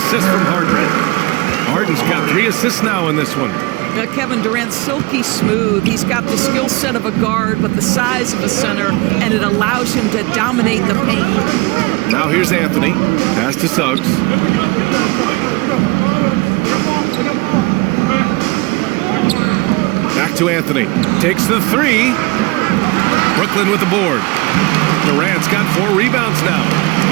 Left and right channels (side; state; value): left; quieter; 24.3 dB